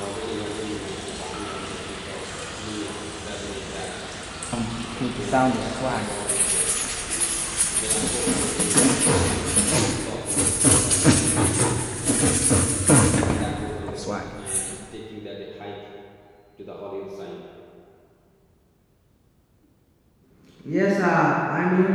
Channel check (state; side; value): identical; both; correlation 1.00